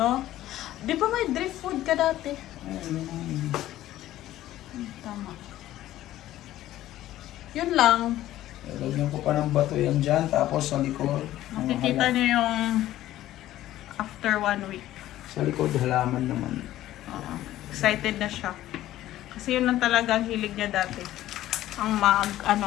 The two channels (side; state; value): right; quieter; 14.2 dB